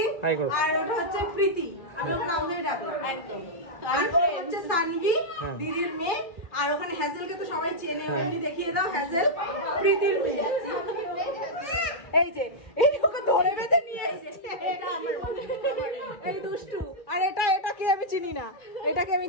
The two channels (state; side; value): late; right; 2.3 ms